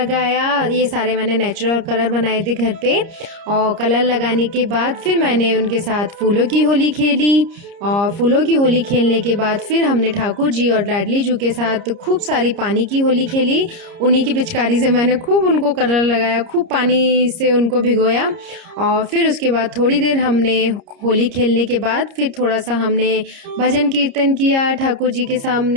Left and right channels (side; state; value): left; late; 30 ms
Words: ये सारे मैंने नेचुरल कलर बनाए थे घर पे। और कलर लगाने के बाद फिर मैंने उनके साथ फूलों की होली खेली, और फूलों की होली खेलने के बाद फिर हमने ठाकुर जी और लाडली जू के साथ खूब सारी पानी की होली खेली। उन्हीं की पिचकारी से मैंने खूब उनको कलर लगाया, खूब पानी से उनको भिगोया। और फिर उसके बाद थोड़ी देर हमने होली खेलने के बाद फिर थोड़ा सा हमने भजन कीर्तन किया ठाकुर जी के